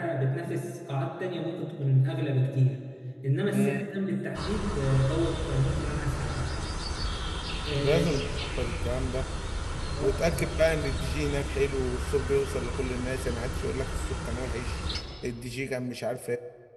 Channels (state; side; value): identical; both; correlation 1.00